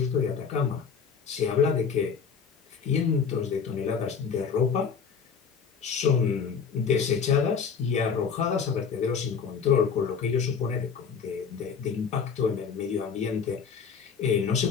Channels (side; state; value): right; quieter; 6.2 dB